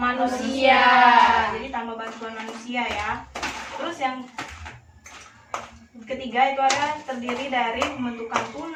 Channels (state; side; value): identical; both; correlation 1.00